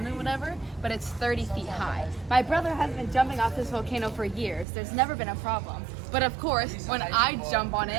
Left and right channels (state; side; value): drops out; left; at 4.7 s